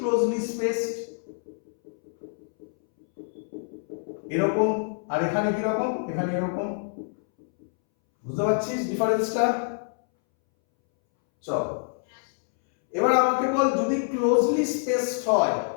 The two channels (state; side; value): silent; right; 61 dB below the other